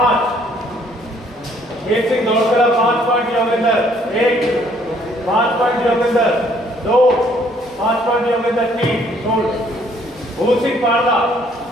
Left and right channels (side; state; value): both; normal; correlation 0.63